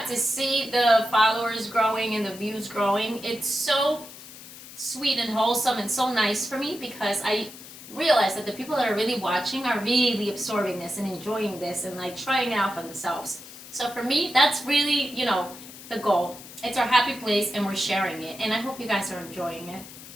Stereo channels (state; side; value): noise; left; hiss, 16 dB below the sound